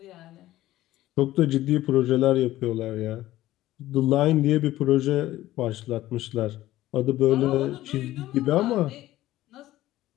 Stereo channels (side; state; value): right; quieter; 15.3 dB